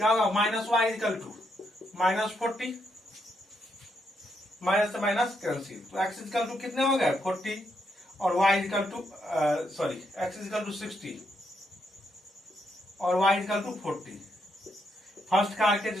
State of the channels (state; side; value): normal; both; correlation 0.78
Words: होगा minus y equal to minus 40, minus से माइनस कैंसिल, तो x इक्वल टू कितने हो गए 40 और y equal to x equal to 60 और y equal to 40। First car के